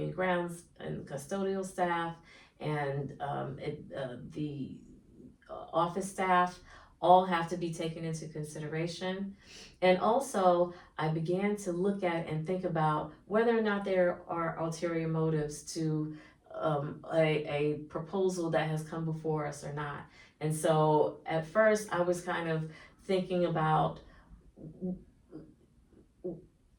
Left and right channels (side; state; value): both; identical; correlation 1.00